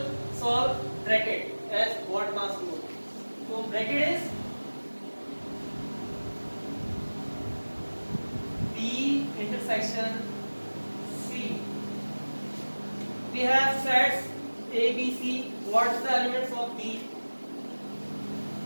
solve bracket as what must do. So bracket is B intersection C. We have sets A, B, C. What is the elements of B?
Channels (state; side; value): inverted; both; correlation -1.00